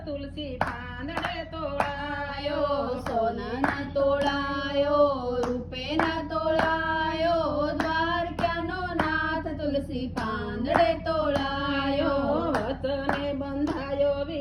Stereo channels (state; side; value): identical; both; correlation 1.00